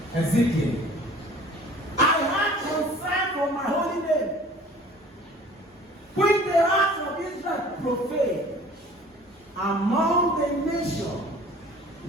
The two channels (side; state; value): both; normal; correlation 0.48